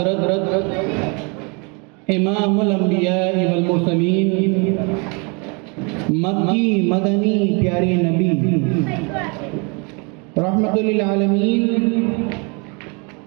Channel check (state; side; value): quieter; left; 32.3 dB